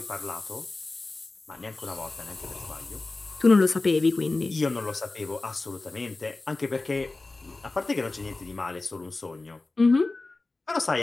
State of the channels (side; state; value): right; quieter; 3.3 dB